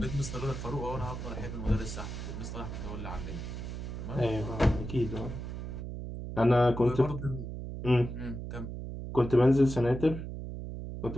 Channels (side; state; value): right; noise; hum, 7 dB below the sound